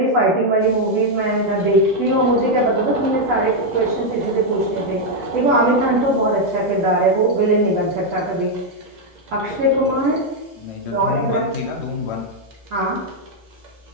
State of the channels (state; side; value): normal; both; correlation 0.01